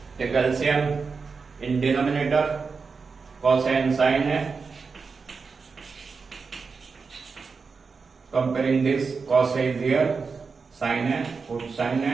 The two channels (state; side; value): quieter; left; 4.9 dB